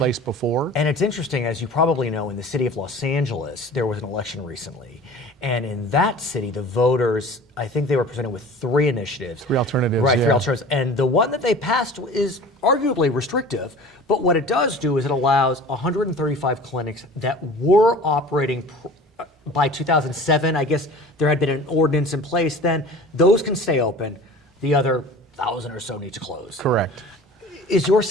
before. And it's interesting, as you probably know, in the city of Los Angeles, there was an election recently. And in that city, the voters, I think they were presented with 3 initiatives. 3 alternatives, Right, 3 alternatives. And the one that they passed is arguably restrictive, but what it does do is it allows 135 clinics that were operating by 2007, I guess there had been an ordinance in place then. Those can stay open. The other 1,000 or so need to close. Correct. Is your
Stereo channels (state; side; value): normal; both; correlation 0.41